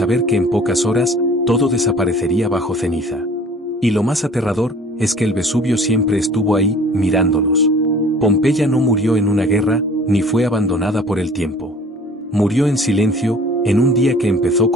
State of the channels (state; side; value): normal; both; correlation 0.49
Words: que en pocas horas, todo desaparecería bajo ceniza. Y lo más aterrador, es que el Vesubio siempre estuvo ahí, mirándolos. Pompeya no murió en una guerra, ni fue abandonada por el tiempo. Murió en silencio, en un día que empezó